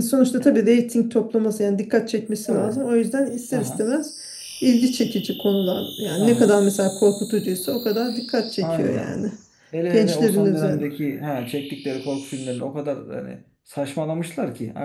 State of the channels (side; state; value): both; identical; correlation 1.00